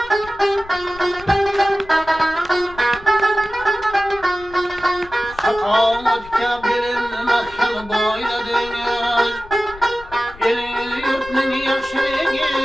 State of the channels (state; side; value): noise; left; rumble, 19 dB below the sound